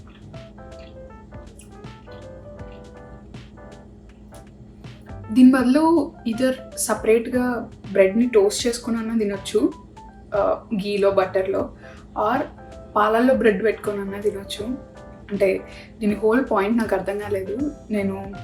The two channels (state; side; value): identical; both; correlation 1.00